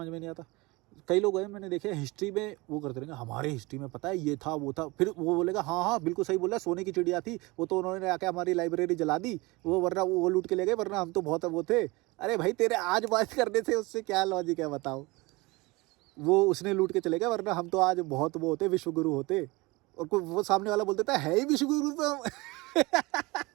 में नहीं आता, कई लोग हैं मैंने देखे हिस्ट्री में वो करते रहेंगे, हमारे हिस्ट्री में पता है ये था वो था, फिर वो बोलेगा हाँ हाँ बिल्कुल सही बोला, सोने की चिड़िया थी वो, तो उन्होंने आके हमारी लाइब्रेरी जला दी, वो वरना वो लूट के ले गए, वरना हम तो बहुत वो थे। अरे भाई तेरे आज बात करने से उससे क्या लॉजिक है बताओ? वो उसने लूट के चले गए, वरना हम तो आज बहुत वो होते, विश्वगुरु होते। और कोई वो सामने वाला बोल देता है ही विश्वगुरु तो हम।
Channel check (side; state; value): left; quieter; 23.8 dB